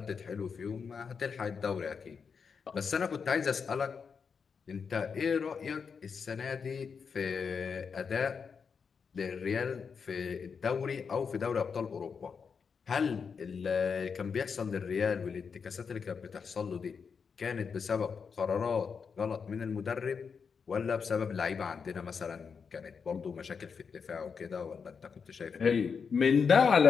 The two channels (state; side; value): quieter; right; 5.9 dB